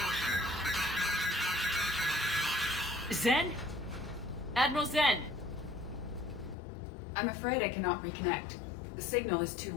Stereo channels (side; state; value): right; drops out; at 6.6 s